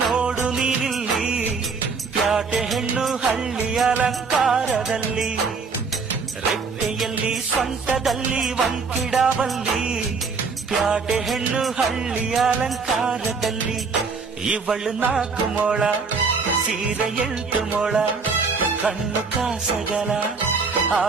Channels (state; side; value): quieter; left; 4.9 dB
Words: ನೋಡು ನೀನಿಲ್ಲಿ, ಪ್ಯಾಟೆ ಹೆಣ್ಣು ಹಳ್ಳಿ ಅಲಂಕಾರದಲ್ಲಿ, ರೆಟ್ಟೆಯಲ್ಲಿ ಸೊಂಟದಲ್ಲಿ ವಂಕಿಡಾವಲ್ಲಿ, ಪ್ಯಾಟೆ ಹೆಣ್ಣು ಹಳ್ಳಿ ಅಲಂಕಾರದಲ್ಲಿ. ಇವಳು 4 ಮೊಳ, ಸೀರೆ 8 ಮೊಳ, ಕಣ್ಣು ಕಾಸಗಲ,